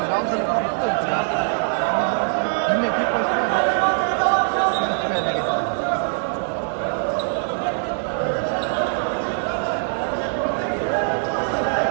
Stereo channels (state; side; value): silent; left; digital silence